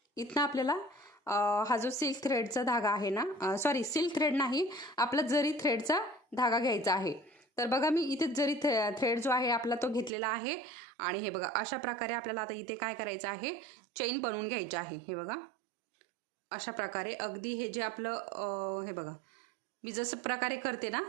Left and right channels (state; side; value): drops out; left; at 10.1 s